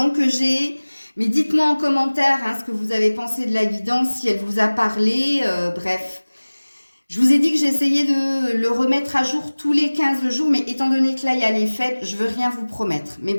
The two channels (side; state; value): both; inverted; correlation -1.00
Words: que j'ai. Mais dites-moi en commentaire hein, ce que vous avez pensé de la guidance, si elle vous a parlé, bref. Je vous ai dit que j'essayais de le remettre à jour tous les 15 jours, mais étant donné que là, il y a les fêtes, je veux rien vous promettre. Mais